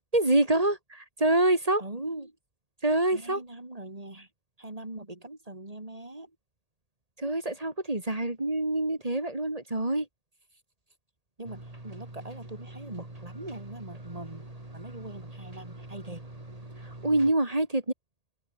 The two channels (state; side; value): late; left; 1.8 ms